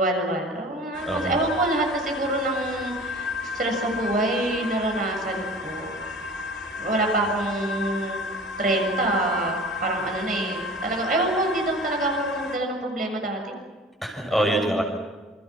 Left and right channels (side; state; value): both; normal; correlation 0.41